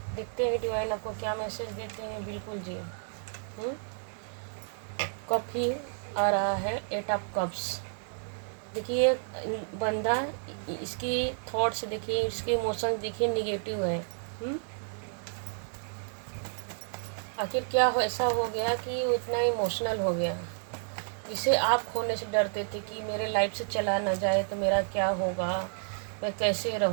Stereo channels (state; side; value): silent; left; digital silence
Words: देखते हैं डिवाइन आपको क्या मैसेज देते हैं। बिल्कुल जी। कप ही आ रहा है, 8 ऑफ कप्स। देखिए बंदा, इसकी थॉट्स देखिए, इसके इमोशंस देखिए निगेटिव है। आखिर क्या ऐसा हो गया कि वो इतना इमोशनल हो गया, जिसे आप खोने से डरते थे कि मेरे लाइफ से चला ना जाए तो मेरा क्या होगा, मैं कैसे